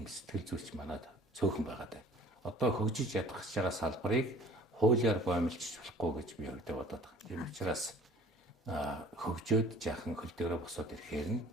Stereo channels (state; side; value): normal; both; correlation 0.48